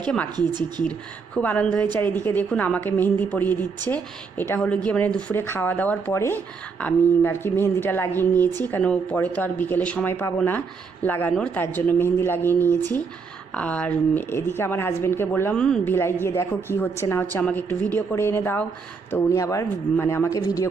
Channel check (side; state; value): left; quieter; 5.1 dB